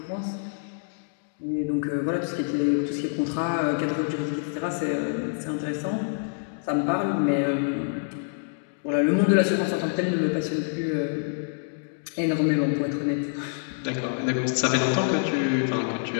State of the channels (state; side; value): silent; right; digital silence